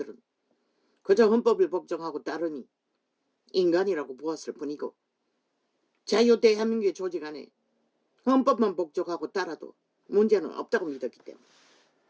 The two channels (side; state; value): both; identical; correlation 1.00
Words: 그저 헌법을 복종하고 따르니 인간이라고 보았을 뿐이고, 자유대한민국의 조직 안에 헌법만 복종하고 따라도 문제는 없다고 믿었기 때문에.